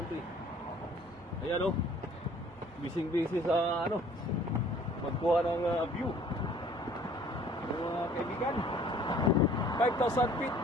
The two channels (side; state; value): both; normal; correlation 0.54